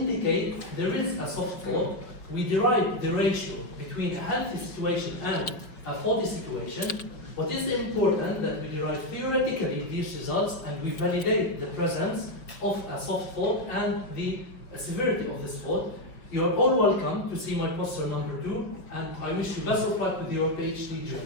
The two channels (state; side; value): late; right; 5.3 ms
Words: there is a soft fault. We derive the ratio between a healthy situation and a faulty situation. What is important that we derive theoretically these results and we validate the presence of a soft fault and the severity of this fault. You are all welcome to see my poster number 2, and I wish you best of luck with your PhD journey.